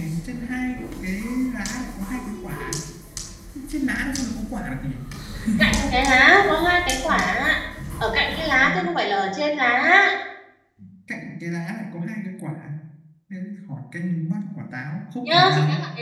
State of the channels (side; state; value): both; identical; correlation 1.00